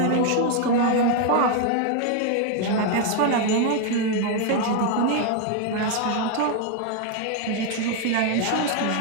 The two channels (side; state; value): both; different; correlation 0.01